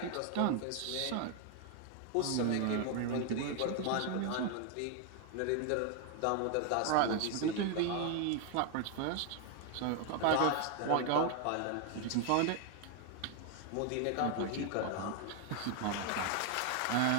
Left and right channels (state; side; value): different; both; correlation 0.00